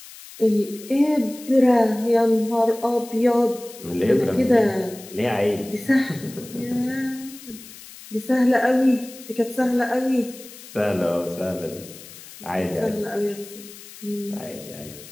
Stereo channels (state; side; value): noise; left; hiss, 17 dB below the sound